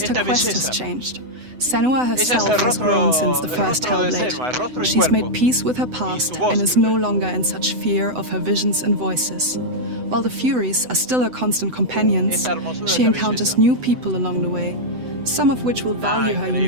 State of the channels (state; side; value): late; left; 8.0 ms